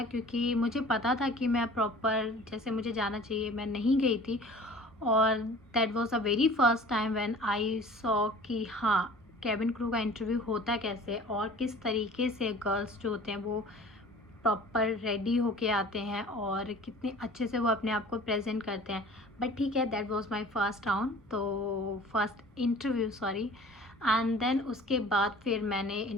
क्योंकि मुझे पता था कि मैं प्रॉपर जैसे मुझे जाना चाहिए मैं नहीं गई थी। और that was a very first time when I saw कि हाँ, कैबिन क्रू का इंटरव्यू होता कैसे और किस तरीके से गर्ल्स जो होते हैं वो प्रॉपर रेडी होके आते हैं और कितने अच्छे से वो अपने आप को प्रेजेंट करते हैं। बट ठीक है, that was my first round, तो first interview sorry. And then उसके बाद फिर मैंने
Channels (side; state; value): both; normal; correlation 0.45